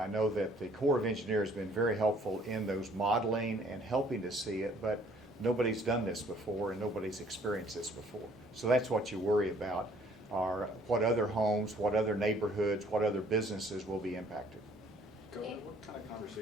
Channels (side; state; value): both; normal; correlation 0.59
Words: know that the Corps of Engineers has been very helpful in those modeling and helping to see it, but nobody's done this before and nobody's experienced this before. So that's what you worry about, are what other homes, what other neighborhoods, what other businesses will be impacted. Governor, what kind of